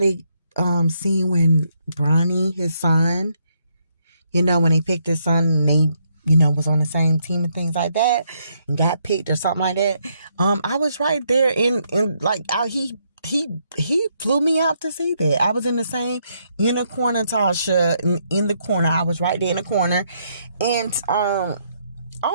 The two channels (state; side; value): inverted; both; correlation -0.74